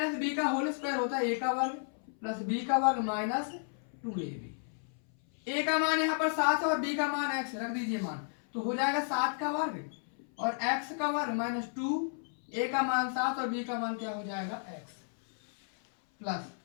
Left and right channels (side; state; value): right; silent; 56 dB below the other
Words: बी का होल स्क्वायर होता है a का वर्ग प्लस b का वर्ग माइनस 2ab। a का मान यहाँ पर 7 और b का मान x, रख दीजिए मान, तो हो जाएगा 7 का वर्ग और x का वर्ग माइनस 2, a का मान 7 और b का मान क्या हो जाएगा x, प्लस